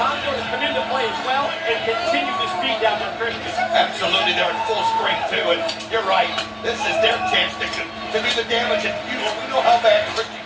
to come into play as well, and continue to speed down their Christian. Absolutely, they're in full strength too, and you're right. This is their chance to do the damage, and we know how bad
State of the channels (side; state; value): both; identical; correlation 1.00